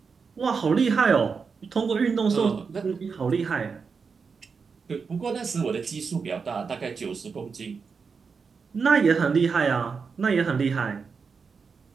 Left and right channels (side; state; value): left; quieter; 5.4 dB